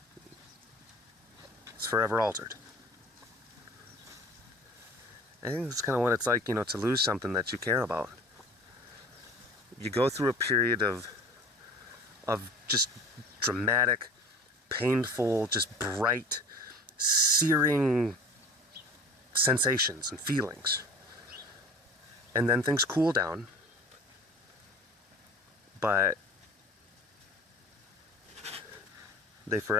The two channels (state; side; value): normal; both; correlation 0.42